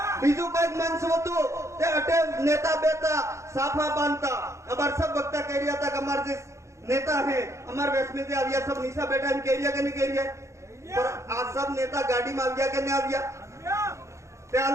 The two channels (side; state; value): left; late; 0.14 ms